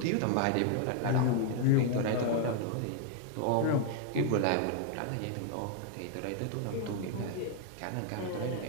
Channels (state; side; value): different; both; correlation 0.00